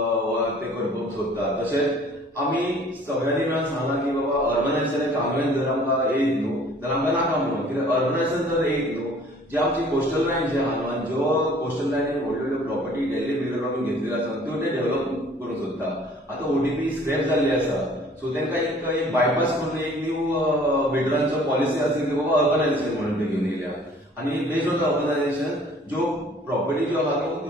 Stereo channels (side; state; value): both; normal; correlation 0.53